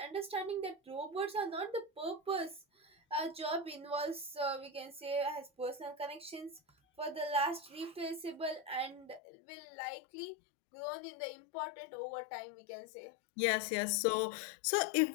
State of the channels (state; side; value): drops out; right; at 9.2 s